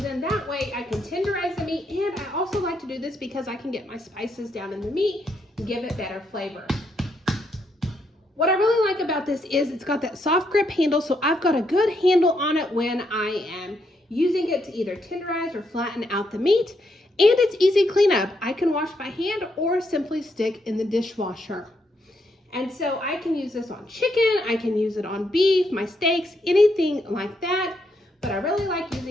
that way I can tenderize the meat, and I also like to do this because I can get my spices down in the meat and give it better flavor. What I really like about this is it's got that soft grip handle, so I've got a good handle on it when I am using it to either tenderize or flatten out the meat, and it's easy cleanup. I can wash by hand or simply stick in the dishwasher. And so I can use this on chicken, I can use it on beef, my steaks, anything like that. But I really like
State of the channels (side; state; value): both; normal; correlation 0.77